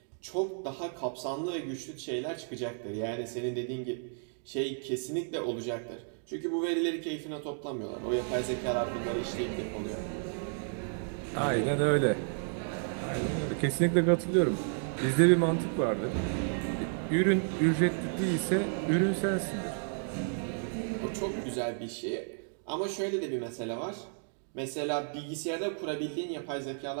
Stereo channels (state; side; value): silent; left; digital silence